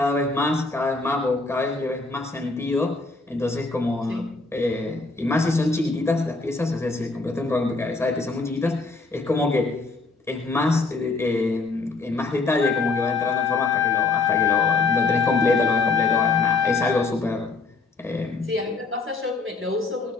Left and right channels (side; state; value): right; quieter; 3.9 dB